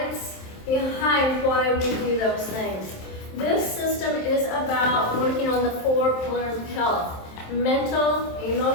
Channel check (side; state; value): right; late; 27 ms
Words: behind why we do those things. This system is about working on the 4 pillars of health: mental,